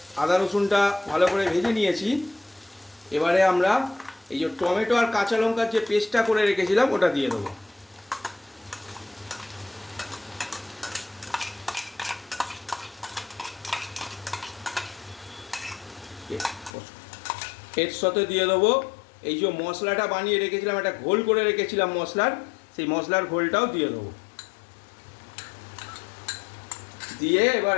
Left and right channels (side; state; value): right; drops out; at 16.7 s